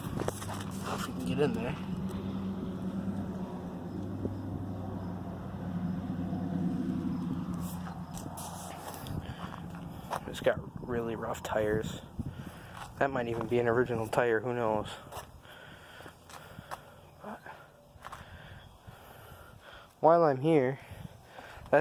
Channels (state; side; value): identical; both; correlation 1.00